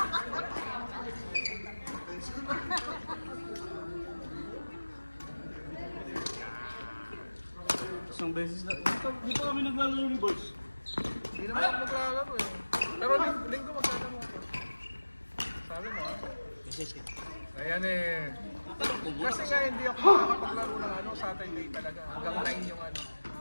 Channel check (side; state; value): both; inverted; correlation -1.00